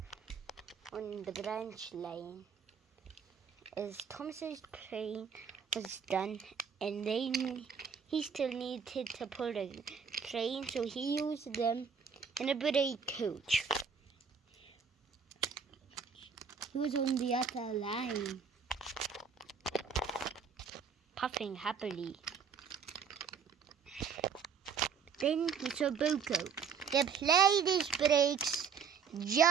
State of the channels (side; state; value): left; quieter; 6.5 dB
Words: on the branch line. As Thomas's train was done, and he still needed to pull the train, so he used them in a brake coach. He was on the other line, puffing happily. Then he saw Bunko. The plane breaks